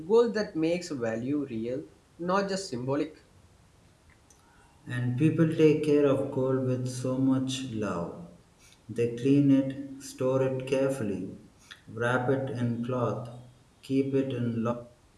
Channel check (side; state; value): both; identical; correlation 1.00